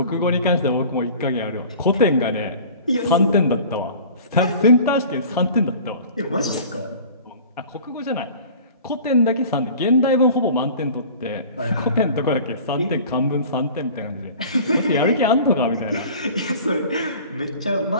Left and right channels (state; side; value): inverted; both; correlation -0.43